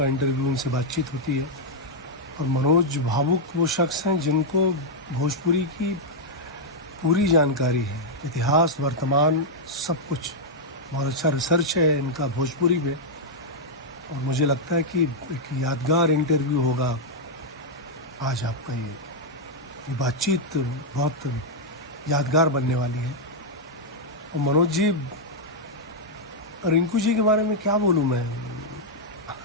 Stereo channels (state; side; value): normal; both; correlation -0.04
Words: इंटरव्यू, उनसे बातचीत होती है। और मनोज भावुक वो शख्स हैं जिनको भोजपुरी की पूरी जानकारी है, इतिहास, वर्तमान, सब कुछ। बहुत अच्छा रिसर्च है इनका भोजपुरी में, और मुझे लगता है कि एक यादगार इंटरव्यू होगा आज आपका। ये बातचीत बहुत यादगार बनने वाली है। और मनोज जी, रिंकू जी के बारे में क्या बोलूँ मैं।